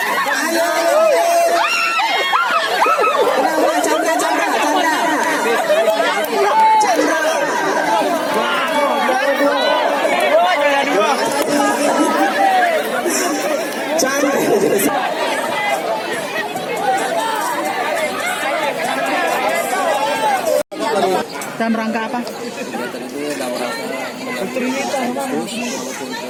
Dalam rangka apa? Kegiatan itu dalam rangka Agustus maupun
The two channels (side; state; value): both; identical; correlation 1.00